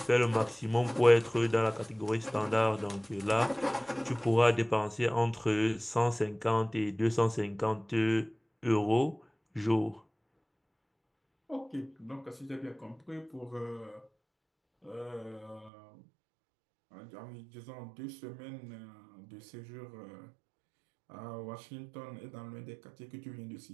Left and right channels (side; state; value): left; drops out; at 15.7 s